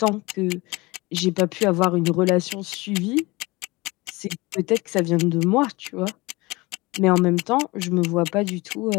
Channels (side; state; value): right; quieter; 23.0 dB